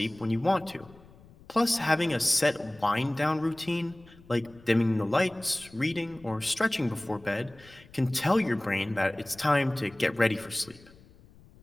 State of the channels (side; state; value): left; noise; rumble, 24 dB below the sound